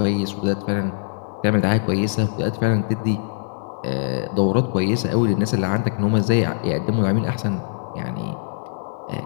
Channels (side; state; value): right; silent; digital silence